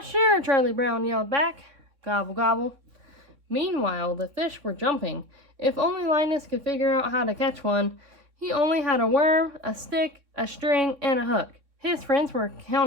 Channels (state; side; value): late; left; 3.6 ms